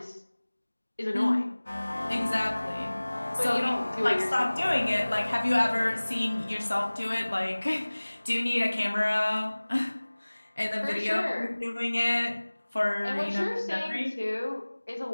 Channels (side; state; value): both; inverted; correlation -1.00